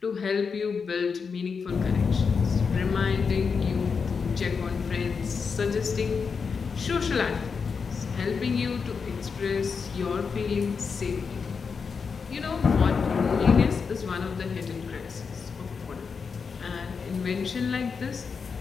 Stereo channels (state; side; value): quieter; right; 5.5 dB